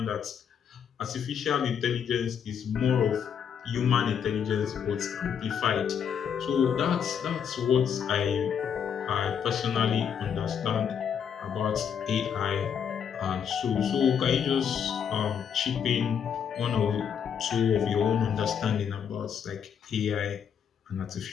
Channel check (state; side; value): quieter; right; 7.8 dB